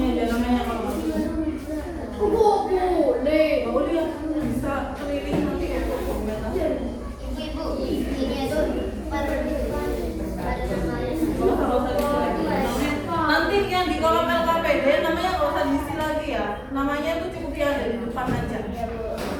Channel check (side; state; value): both; identical; correlation 1.00